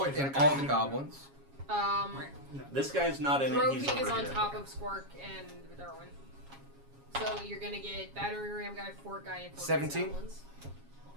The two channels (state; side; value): late; left; 7.3 ms